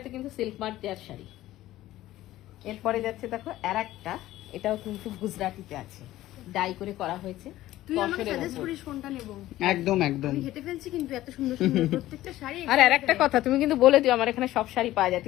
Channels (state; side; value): quieter; right; 15.2 dB